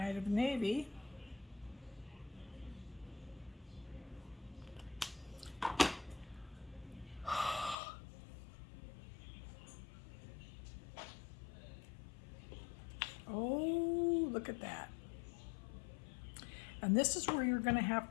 of Navy. Oh, look at that. And this is where you're going to have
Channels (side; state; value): right; drops out; at 7.8 s